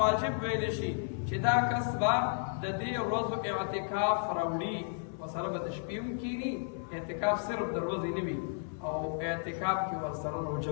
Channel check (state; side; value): silent; right; 56 dB below the other